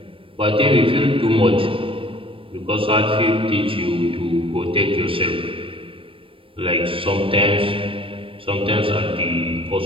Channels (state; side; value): late; left; 0.26 ms